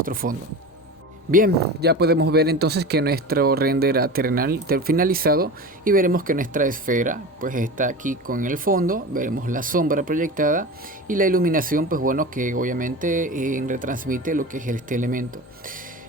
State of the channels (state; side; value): normal; both; correlation 0.30